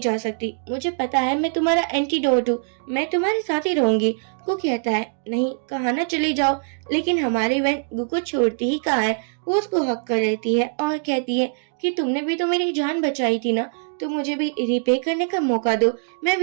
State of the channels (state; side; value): silent; left; digital silence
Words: सकती, मुझे पता है मैं तुम्हारा एंटीडोट हूँ, मैं तुम्हारे साथ ही रहूंगी। गू कहता है, नहीं कहा ना चली जाओ, लेकिन हमारी वैन गू को छोड़ती ही कहाँ है। वो उसको हक कर लेती है और कहती है कि तुमने भी तो मेरी जान बचाई थी ना, तो मुझे भी रिपे करने का मौका दो, मैं